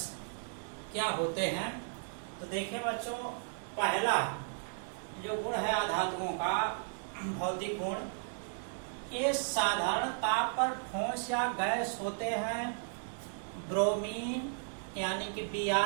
क्या होते हैं। तो देखिए बच्चों, पहला जो गुण है आधातुओं का भौतिक गुण, ये साधारण ताप पर ठोस या गैस होते हैं। ब्रोमीन यानी कि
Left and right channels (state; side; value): silent; left; digital silence